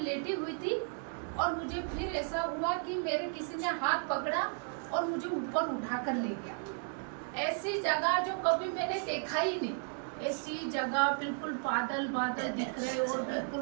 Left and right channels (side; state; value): left; silent; 55 dB below the other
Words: लेटी हुई थी और मुझे फिर ऐसा हुआ कि मेरे किसी ने हाथ पकड़ा और मुझे ऊपर उठा कर ले गया। ऐसी जगह जो कभी मैंने देखा ही नहीं, ऐसी जगह बिल्कुल बादल बादल दिख रहे और बिल्कुल